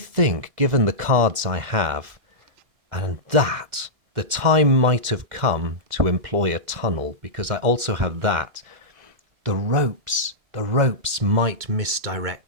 given the cards I have, and that, the time might have come to employ a tunnel, because I also have that. The ropes might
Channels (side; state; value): left; late; 2.0 ms